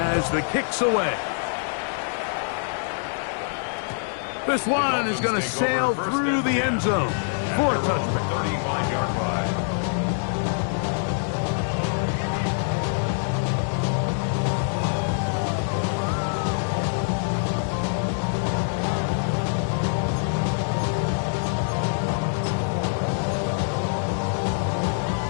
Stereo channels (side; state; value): right; silent; digital silence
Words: the kick's away. This one is going to sail through the end zone for a touchback. 35-yard line.